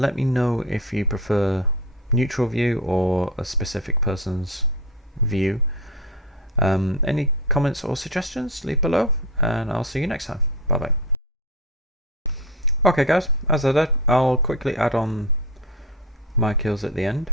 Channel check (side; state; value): both; normal; correlation 0.21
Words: me know if you prefer neutral view or a specific person's view. Any comments or suggestions, leave below, and I'll see you next time. Bye bye. Okay guys, as I said, I'll quickly add on my kills at the end.